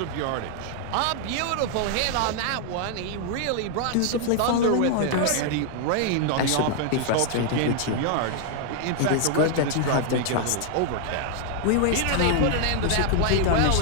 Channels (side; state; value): both; different; correlation 0.00